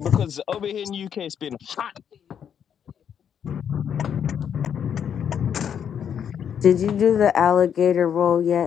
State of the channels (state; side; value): quieter; right; 8.3 dB